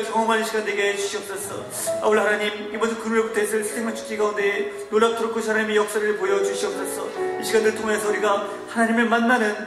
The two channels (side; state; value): both; identical; correlation 1.00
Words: 경험하는 시간 되게 해주시옵소서. 아울러 하나님, 이번 주 금요일부터 있을 생명 축제 가운데 놀랍도록 그 하나님의 역사를 보여주시옵소서. 이 시간을 통해서 우리가 하나님을